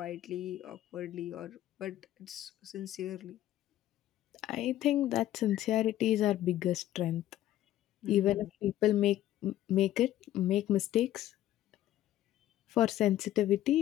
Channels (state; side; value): quieter; right; 13.4 dB